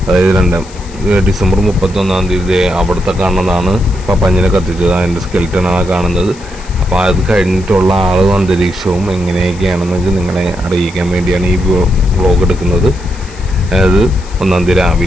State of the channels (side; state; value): left; noise; hiss, 21 dB below the sound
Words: അതായത് ഡിസംബർ 31 അവിടുത്തെ കാണുന്നതാണ് പപ്പാഞ്ഞിനെ കത്തിച്ചത്. അതിൻ്റെ സ്കെൽറ്റനാണ് കാണുന്നത്. അപ്പോൾ അത് കഴിഞ്ഞിട്ടുള്ള ആളും അന്തരീക്ഷവും എങ്ങനെയൊക്കെയാണെന്നൊക്കെ നിങ്ങളെ അറിയിക്കാൻ വേണ്ടിയാണ് ഈ വ്ളോഗ് എടുക്കുന്നത്. അതായത് 1